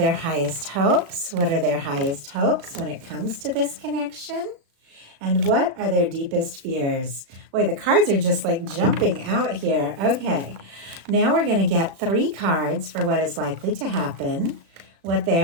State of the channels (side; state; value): left; late; 36 ms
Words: highest hopes? What are their highest hopes when it comes to this connection? And what are their deepest fears? Boy, the cards are just like jumping out here. Okay, now we're going to get 3 cards for what is likely to happen, what they